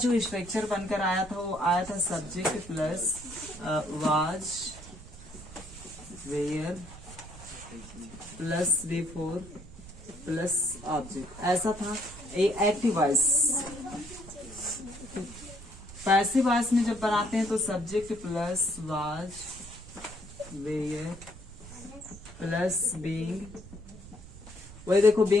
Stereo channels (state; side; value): noise; right; rumble, 16 dB below the sound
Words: स्ट्रक्चर बनकर आया था वो आया था subject plus was, were plus before plus object, ऐसा था। एक्टिव वॉइस, पैसिव वॉइस में जब बनाते हैं तो subject plus was, were plus being, वही देखो